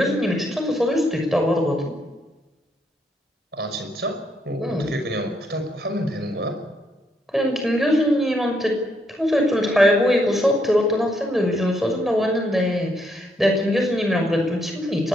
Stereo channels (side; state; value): both; normal; correlation 0.75